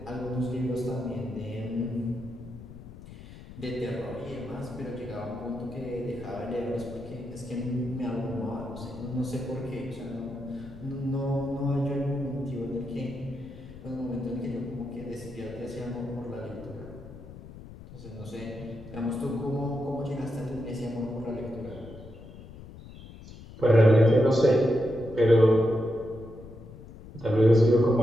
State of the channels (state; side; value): noise; left; rumble, 15 dB below the sound